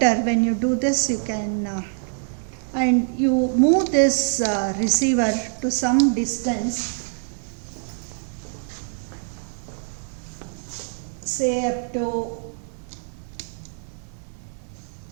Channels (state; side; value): silent; left; digital silence